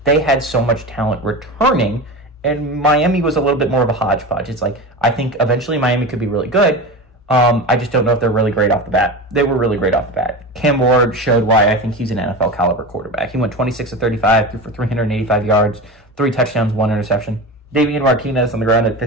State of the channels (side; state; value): both; normal; correlation 0.26